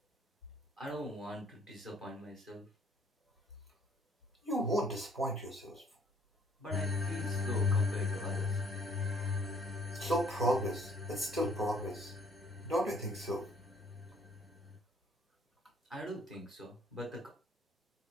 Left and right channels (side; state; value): both; normal; correlation 0.60